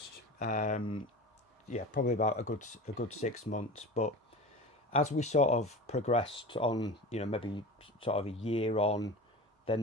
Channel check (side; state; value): both; normal; correlation 0.33